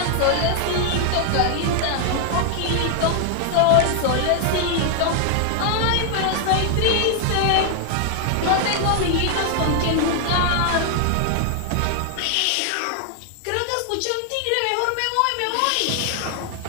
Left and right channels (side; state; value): both; different; correlation 0.00